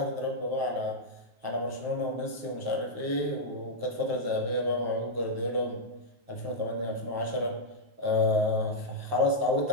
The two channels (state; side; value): late; left; 9.5 ms